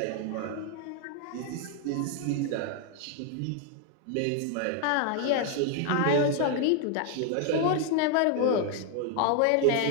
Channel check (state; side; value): different; both; correlation 0.00